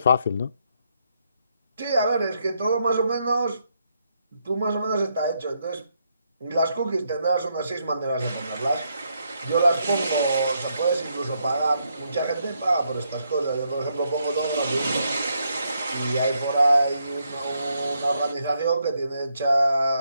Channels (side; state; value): both; inverted; correlation -0.78